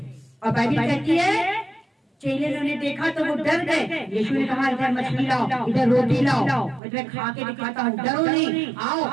और बाइबल कहती है चेले ने देखा तो वो डर गए। यीशु ने कहा इधर मछली लाओ, इधर रोटी लाओ, मैं खा के दिखाता हूँ, डरो नहीं,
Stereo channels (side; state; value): left; drops out; at 6.8 s